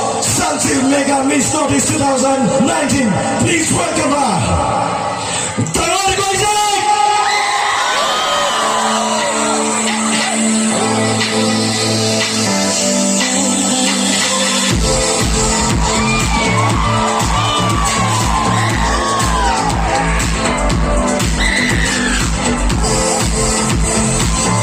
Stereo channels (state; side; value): identical; both; correlation 1.00